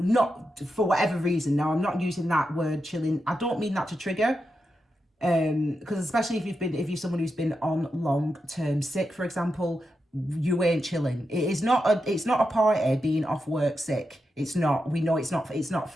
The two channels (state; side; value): normal; both; correlation 0.87